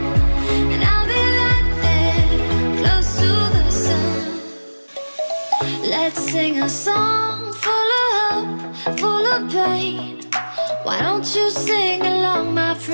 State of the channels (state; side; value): inverted; both; correlation -1.00